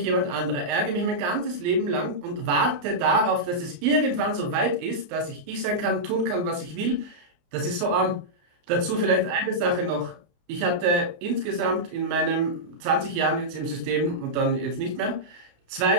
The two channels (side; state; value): left; late; 29 ms